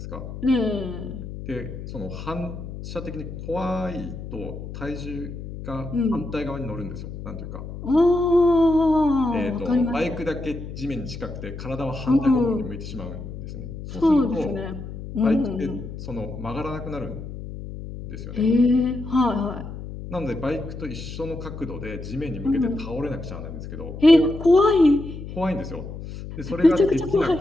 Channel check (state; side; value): noise; left; hum, 10 dB below the sound